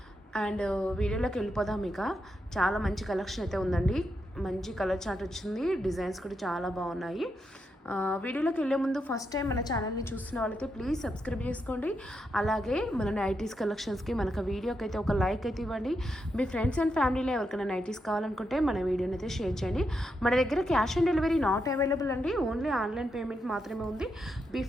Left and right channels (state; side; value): normal; both; correlation 0.83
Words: అండ్ వీడియోలోకి వెళ్ళిపోదాం. ఇక చాలా మంచి కలెక్షన్ అయితే ఉందండి. మంచి కలర్ చార్ట్ వచ్చింది. డిజైన్స్ కూడా చాలా బాగున్నాయి. వీడియోలోకి వెళ్ళే ముందు ఫస్ట్ టైం మన ఛానల్ని చూస్తున్న వాళ్ళైతే ప్లీజ్ సబ్స్క్రైబ్ చేసుకోండి. అలాగే మన నైటీస్ కలెక్షన్స్కి మనకు వీడియోకి అయితే ఒక లైక్ అయితే ఇవ్వండి. మీ ఫ్రెండ్స్ అండ్ ఫ్యామిలీలో ఎవరికైనా నైటీస్ కావాలనుకుంటే మన వీడియోని అయితే షేర్ చేయండి. మన దగ్గర cash on delivery not available అండి. ఓన్లీ ఆన్లైన్ పేమెంట్ మాత్రమే ఉంది.